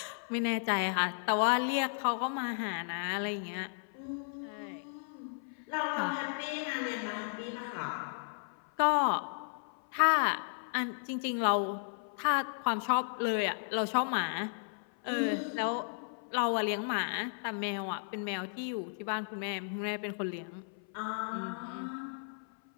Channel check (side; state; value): right; silent; 55 dB below the other